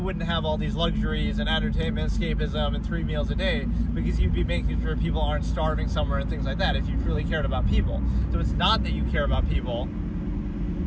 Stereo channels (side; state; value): both; identical; correlation 1.00